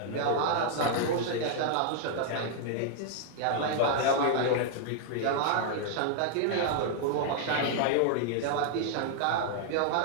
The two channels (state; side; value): different; both; correlation -0.01